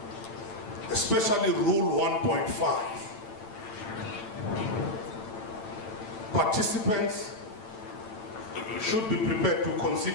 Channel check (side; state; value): right; late; 8.9 ms